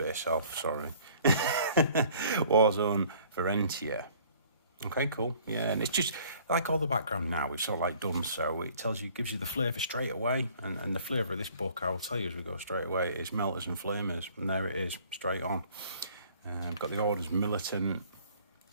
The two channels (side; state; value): both; inverted; correlation -0.55